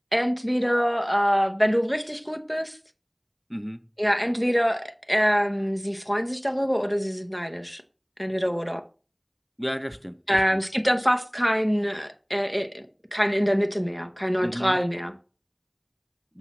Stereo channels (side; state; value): both; identical; correlation 1.00